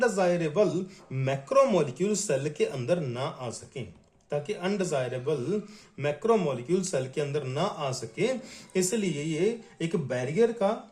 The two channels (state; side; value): identical; both; correlation 1.00